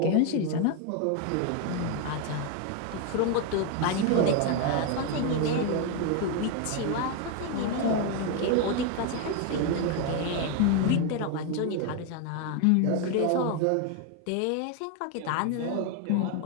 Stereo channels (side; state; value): both; different; correlation 0.01